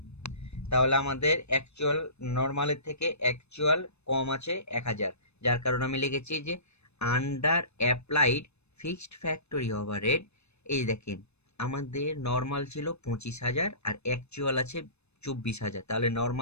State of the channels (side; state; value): right; late; 0.80 ms